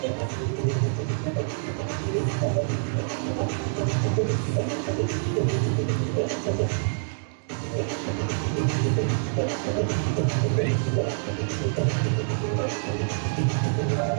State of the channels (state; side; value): silent; left; digital silence